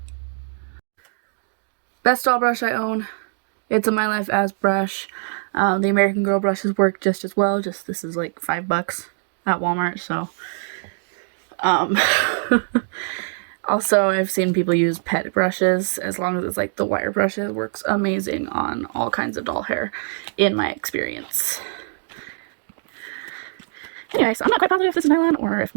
Best doll brush I own. It's a My Life As brush. The American Girl brushes work just as well. Just this is like $5 at Walmart. So, also I've seen people use pet brushes as long as it's like the wire brush. It works amazing on all kinds of doll hair, in my experience. Anyway, so I'm not quite positive if this is nylon or if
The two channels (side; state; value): left; silent; digital silence